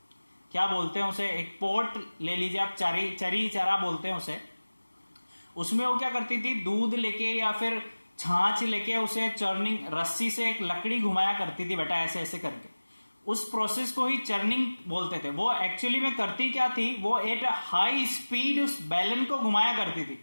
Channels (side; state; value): both; inverted; correlation -1.00